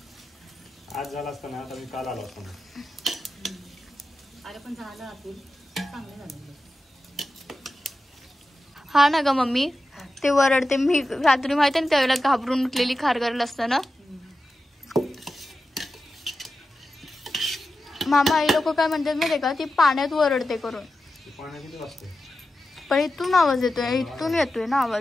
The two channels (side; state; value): both; normal; correlation 0.92